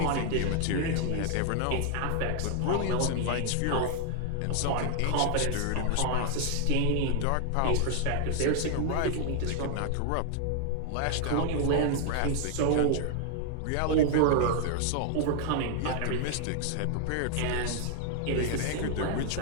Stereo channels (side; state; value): both; different; correlation 0.00